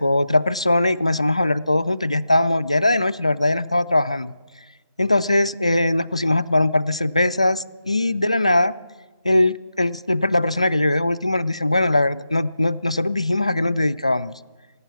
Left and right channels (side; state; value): both; inverted; correlation -0.90